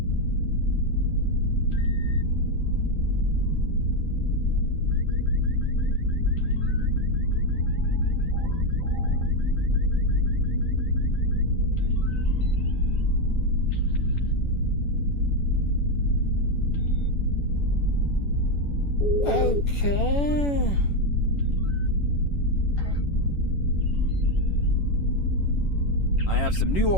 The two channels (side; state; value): right; late; 11 ms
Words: Okay. I have some new